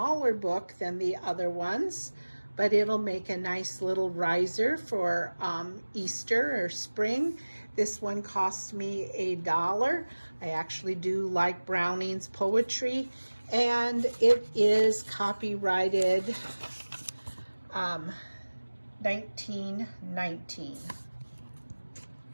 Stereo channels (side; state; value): both; inverted; correlation -1.00